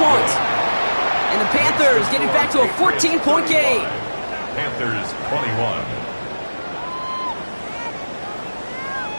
And the Panthers get it back to a 14-point game. Panthers 21.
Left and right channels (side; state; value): both; inverted; correlation -1.00